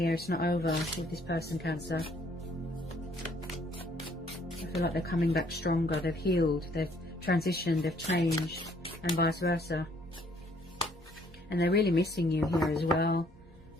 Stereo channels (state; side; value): normal; both; correlation 0.63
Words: It's not over with this person, Cancer. I feel like they're coming back stronger. They've healed. They've transitioned. They've changed. And vice versa. And they're really missing you here as well.